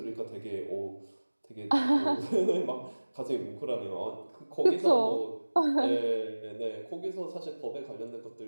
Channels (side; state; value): both; inverted; correlation -1.00